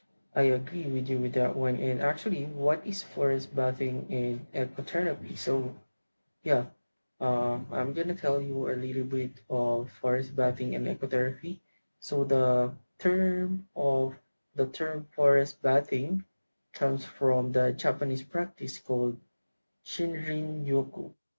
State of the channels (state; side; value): inverted; both; correlation -1.00